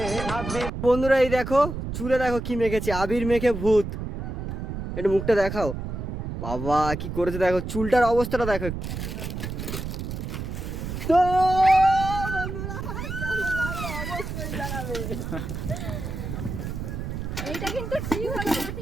আবিরে। বন্ধুরা এই দেখো চুলে দেখো কি মেখেছে, আবির মেখে ভূত। একটু মুখটা দেখাও, বাবা কি করেছে দেখো, চুলটার অবস্থাটা দেখো। তো বন্ধুরা কেমন লাগলো অবশ্যই জানাবে। এইটা কিন্তু ঠিক হলো না,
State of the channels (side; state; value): right; noise; rumble, 5 dB below the sound